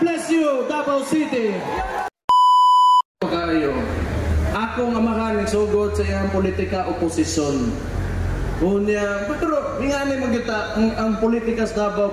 you, Davao City! Kayo, akong amahan nagsugod sa iyang politika oposisyon. Unya, pero nga ni magita ang politika sa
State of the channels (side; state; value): both; identical; correlation 1.00